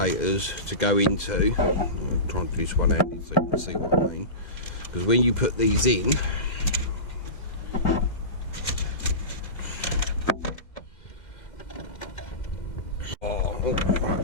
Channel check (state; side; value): late; right; 2.1 ms